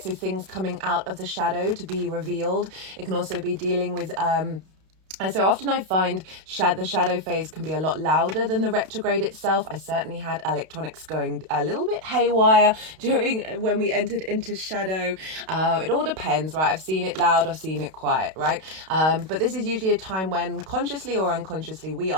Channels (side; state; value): left; late; 32 ms